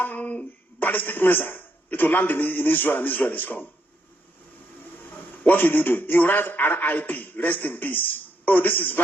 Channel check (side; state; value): both; normal; correlation 0.76